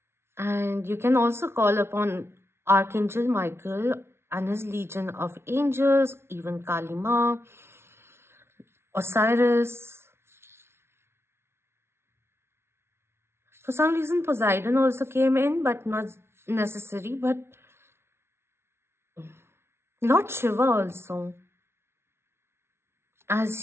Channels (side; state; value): left; late; 0.12 ms